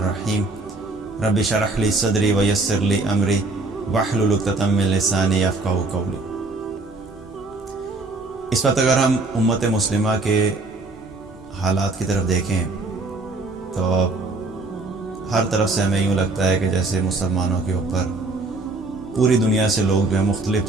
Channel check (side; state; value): left; quieter; 3.3 dB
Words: رب اشرح لی صدری ویسر لی امری واحلل عقدۃ من لسانی یفقہوا قولی۔ اس وقت اگر ہم امت مسلمہ کے حالات کی طرف دیکھیں تو ہر طرف سے ہمیں یوں لگتا ہے کہ جیسے مسلمانوں کے اوپر پوری دنیا سے لوگ جو ہیں مختلف